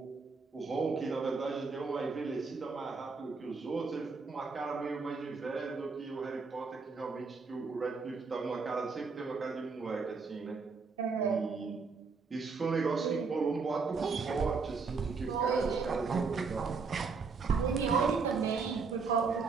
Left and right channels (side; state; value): left; quieter; 4.7 dB